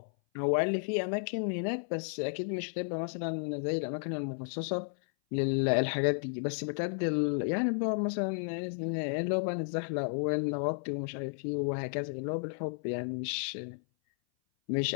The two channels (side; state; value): right; silent; 56 dB below the other